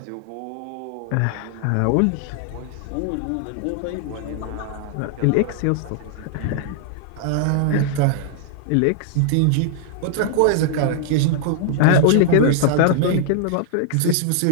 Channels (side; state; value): both; different; correlation -0.01